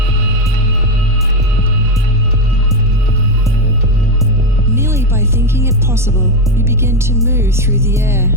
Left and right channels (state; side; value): noise; left; rumble, 14 dB below the sound